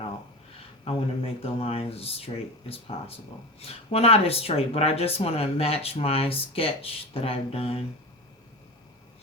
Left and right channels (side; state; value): both; normal; correlation 0.26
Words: want to make the lines as straight as possible. Well, not as straight, but I just want to match my sketch that I've done.